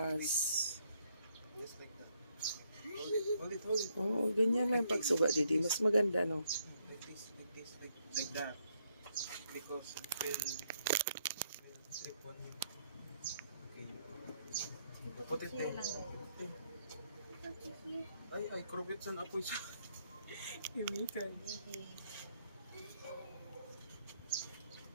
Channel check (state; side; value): inverted; both; correlation -0.73